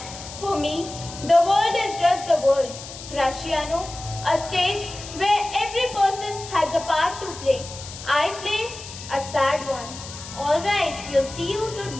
For me, the world is just the world. Graciano, a stage where every person has a part to play. I play a sad one. All right, we'll see you to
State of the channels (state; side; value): noise; left; hiss, 13 dB below the sound